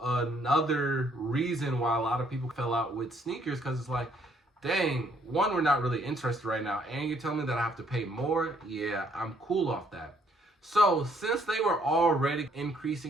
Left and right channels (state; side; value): normal; both; correlation 0.66